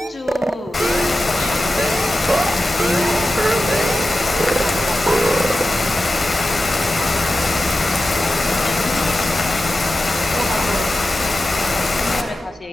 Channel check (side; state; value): both; normal; correlation 0.93